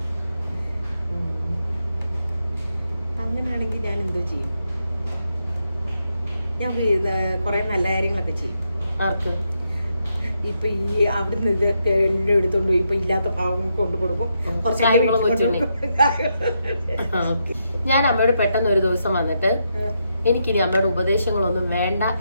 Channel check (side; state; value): both; inverted; correlation -0.82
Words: അങ്ങനെയാണെങ്കിൽ ഞാൻ എന്തോ ചെയ്യും? ഞാൻ കുറെ നല്ല കാര്യങ്ങളൊക്കെ ചെയ്യും. ആർക്ക്? ഇപ്പൊ ഈ അവിടുന്ന് ഇതൊക്കെ എല്ലാം എടുത്തോണ്ട് ഇപ്പൊ ഇല്ലാത്ത ഭാവം കൊണ്ടു കൊടുക്കും. ഞാൻ അമ്മയോട് പെട്ടെന്ന് ഒരു ദിവസം വന്നിട്ട് എനിക്കിനി അമ്മയുടെ ഉപദേശങ്ങളൊന്നും വേണ്ട